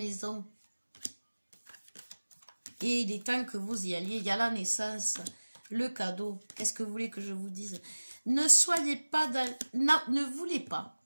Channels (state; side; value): inverted; both; correlation -1.00